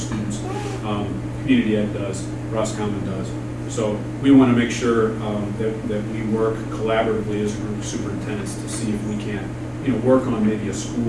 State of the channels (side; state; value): both; identical; correlation 1.00